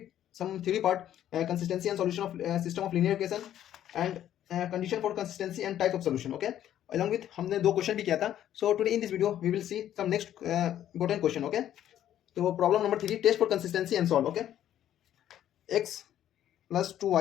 some theory part, consistency and solution of system of linear equation and condition for consistency and type of solution. Okay, along with हमने दो क्वेश्चन भी किया था. So today in this video we will see some next important question. Okay, तो problem number 3, test for consistency and solve. Okay, x plus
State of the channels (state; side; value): quieter; right; 11.4 dB